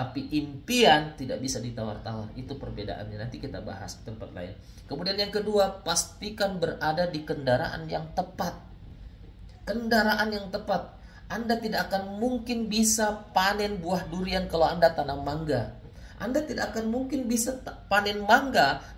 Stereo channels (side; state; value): both; identical; correlation 1.00